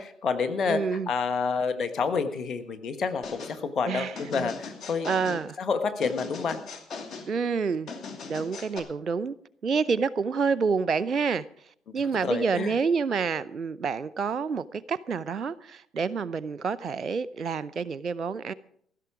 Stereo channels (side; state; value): both; normal; correlation 0.74